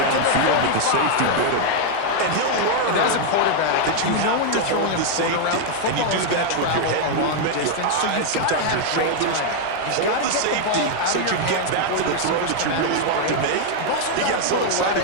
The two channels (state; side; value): different; both; correlation 0.00